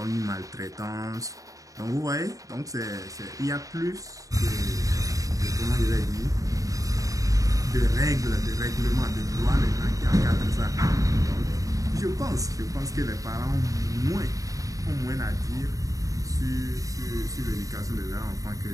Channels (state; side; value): late; left; 0.16 ms